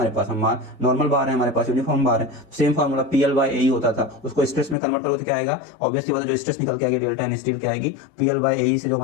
पास, हम नॉर्मल बार है हमारे पास, यूनिफॉर्म बार है, सेम फार्मूला PL/AE होता था, उसको स्ट्रेस में कन्वर्ट करोगे तो क्या आएगा, ऑब्वियसली बात है जो स्ट्रेस निकल के आएगी डेल्टा इन स्टील क्या आएगी, PL/AE से जो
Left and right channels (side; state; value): right; drops out; at 4.8 s